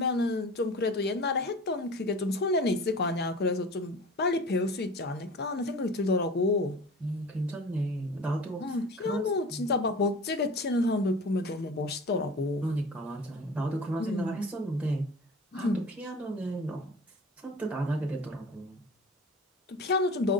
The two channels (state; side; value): normal; both; correlation 0.38